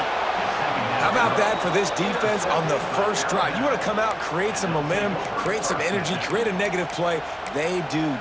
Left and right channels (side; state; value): both; identical; correlation 1.00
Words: How about that for this defense on the first drive? You want to come out, create some momentum, create some energy, create a negative play. They do